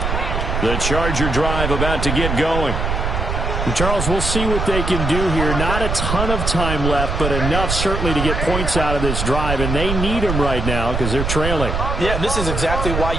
The Charger drive about to get going. And Charles, we'll see what they can do here. Not a ton of time left, but enough certainly to get points out of this drive, and they need them right now because they're trailing. Yeah, this is exactly why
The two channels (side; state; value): right; noise; rumble, 2 dB below the sound